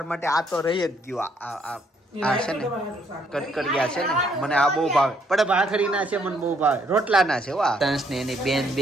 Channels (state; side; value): normal; both; correlation 0.69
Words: માટે આ તો રહી જ ગયું. આ છે ને કટકડિયા છે ને, મને આ બહુ ભાવે. પણ ભાખરી ના છે મને બહુ ભાવે, રોટલા ના છે. વાહ, તંસ ને એની બેન